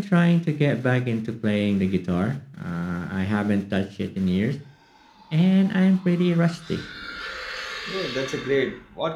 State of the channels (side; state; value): both; identical; correlation 1.00